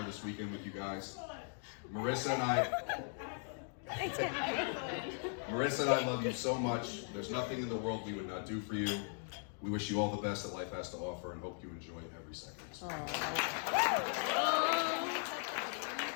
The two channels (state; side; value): silent; right; 52 dB below the other